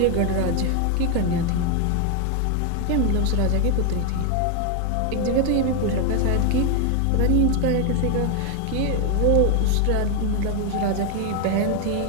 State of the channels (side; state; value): both; different; correlation 0.01